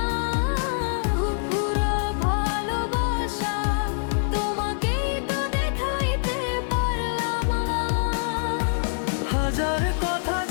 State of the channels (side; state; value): right; silent; digital silence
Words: পুরো ভালোবাসা তোমাকেই তো দেখাইতে পারলাম। হাজার কথা